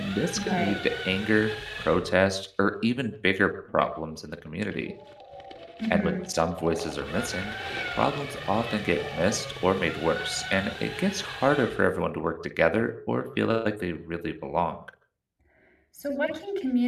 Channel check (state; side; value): identical; both; correlation 1.00